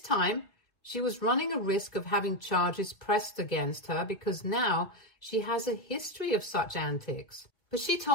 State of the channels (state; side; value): late; right; 1.7 ms